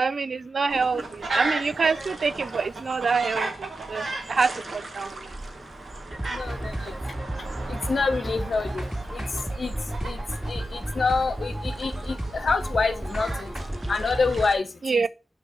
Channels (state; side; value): normal; both; correlation 0.89